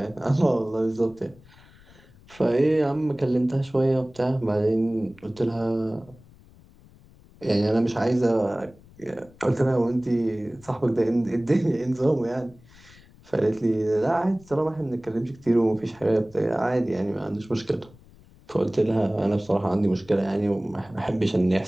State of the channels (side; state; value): left; noise; rumble, 25 dB below the sound